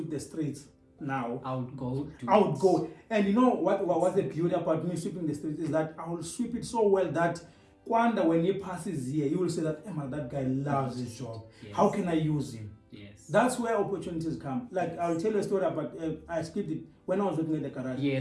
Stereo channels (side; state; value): both; identical; correlation 1.00